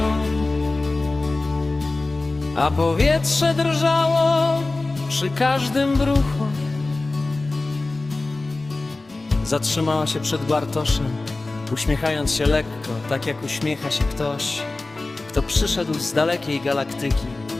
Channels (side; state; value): right; quieter; 3.2 dB